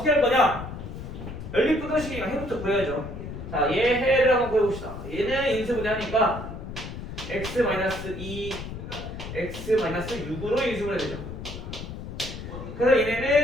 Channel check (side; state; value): left; noise; rumble, 9 dB below the sound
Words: 할 거냐? 연립부등식이니까 해부터 구해야죠. 자, 얘 해를 한번 구해봅시다. 얘는 인수분해하니까 x-2 x-6으로 인수분해 되죠. 그래서